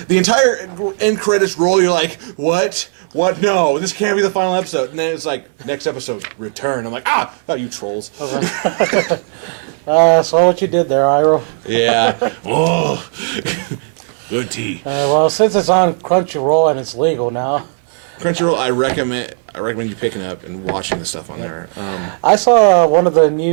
entire end credits roll, you're like, what? What? No, this can't be the final episode. And then it's like, next episode, return. I'm like, oh, you trolls. So what you did there, Iro? Yeah. Oh, good tea. Well, since it's on Crunchyroll and it's legal now, Crunchyroll, I recommend you picking up and watching the stuff on there. I saw one of the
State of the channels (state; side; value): silent; left; 60 dB below the other